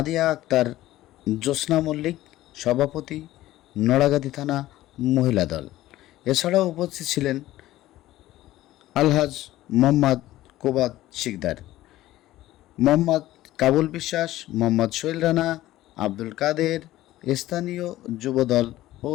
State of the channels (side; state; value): right; quieter; 15.5 dB